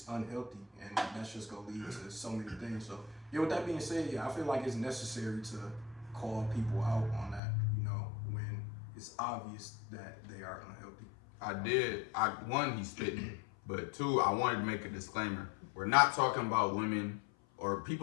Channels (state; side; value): drops out; right; at 7.4 s